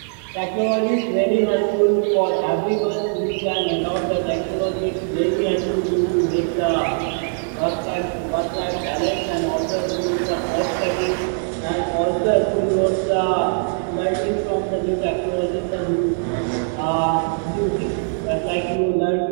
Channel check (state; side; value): silent; left; digital silence